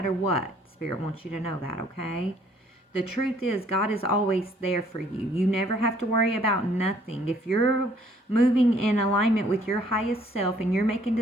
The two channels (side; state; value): both; normal; correlation 0.62